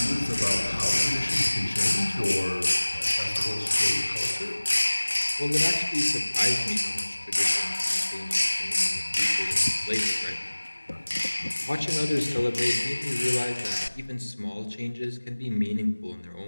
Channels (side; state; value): both; inverted; correlation -1.00